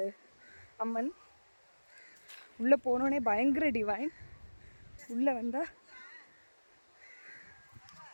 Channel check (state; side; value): inverted; both; correlation -1.00